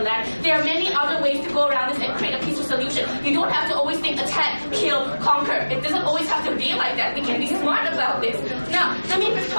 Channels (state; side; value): inverted; both; correlation -1.00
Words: land. There are many other ways to go around this and create a peaceful solution. You don't have to always think attack, kill, conquer. It doesn't always have to be like that. We can be smart about this. Now, let me just